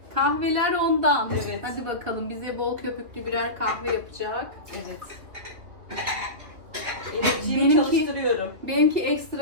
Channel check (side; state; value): left; late; 3.0 ms